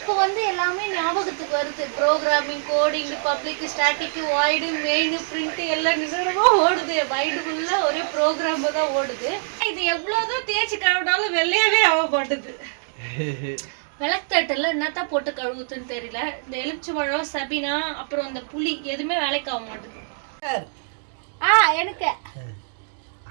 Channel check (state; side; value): silent; left; digital silence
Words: வந்து எல்லாமே ஞாபகத்துக்கு வருது. Programming, coding, public, static, void, main, print எல்லாம் நிஜமாக ஓடுது. மைண்டுக்குள்ளே ஒரே ப்ரோக்ராம் தான் ஓடுது. இது எவ்வளோதான் தேய்ச்சி கழுவினாலும் வெள்ளையாவே ஆக மாட்டுது. விளக்குத்தட்டில் என்னத்தான் போட்டு கழுவுதுன்னு தெரியல. இந்த எலுமிச்சை பழம், சபினா, அப்புறம் இந்த புளி எதுவுமே வேலைக்கு ஆக மாட்டுது. எனக்கு